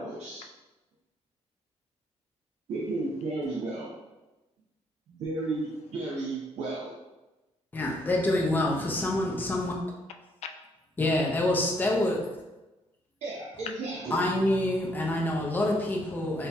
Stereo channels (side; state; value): both; normal; correlation 0.70